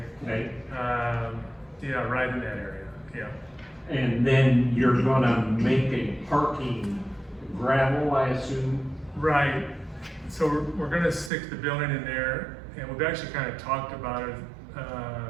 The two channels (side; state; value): left; drops out; at 11.3 s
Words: Okay. Yeah, right in that area. Yeah. And then you're gonna make a parking gravel, I assume? Right. So we're gonna stick the building in there, and we've actually kind of talked about it,